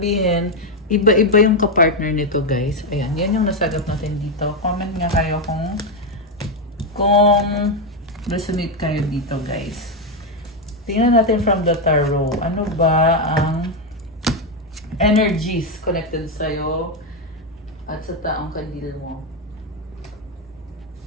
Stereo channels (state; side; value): normal; both; correlation 0.05